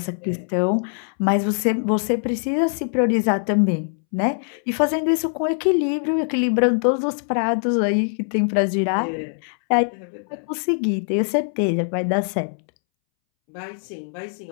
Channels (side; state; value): right; silent; 64 dB below the other